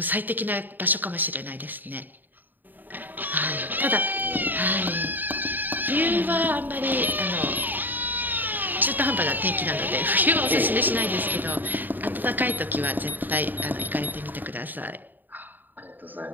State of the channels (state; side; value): late; left; 0.089 ms